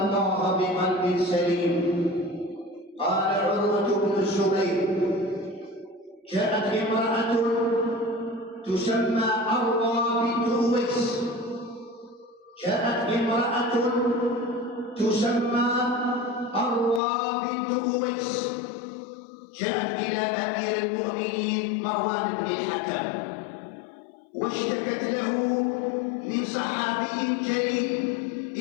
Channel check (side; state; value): right; drops out; at 17.0 s